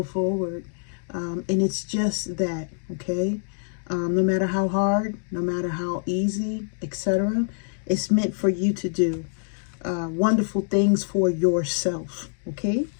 forward. And it's just that, okay? No matter how hard, no matter how easy, etc., it's meant for you to do wonderful things for yourself, okay?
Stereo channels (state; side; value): silent; right; digital silence